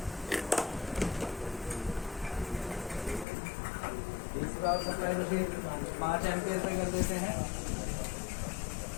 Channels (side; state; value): right; drops out; at 3.2 s